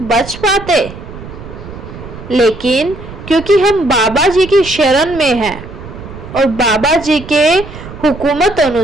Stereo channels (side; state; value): right; noise; rumble, 14 dB below the sound